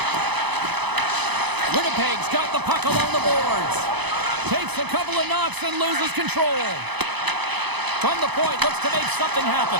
Winnipeg's got the puck along the boards. Takes a couple of knocks and loses control. From the point, looks to make something happen.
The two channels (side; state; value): left; late; 0.99 ms